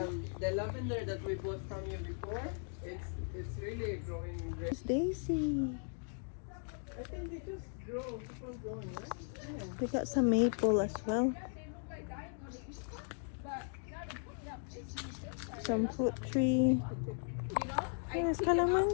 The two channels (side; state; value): right; silent; 53 dB below the other